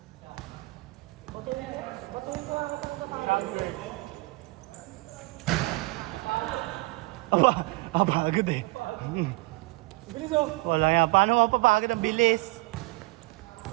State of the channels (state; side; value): quieter; left; 23.7 dB